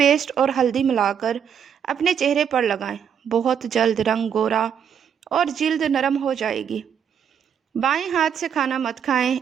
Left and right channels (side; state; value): left; quieter; 8.0 dB